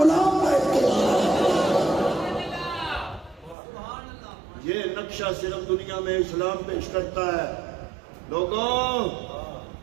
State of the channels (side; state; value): left; drops out; at 3.6 s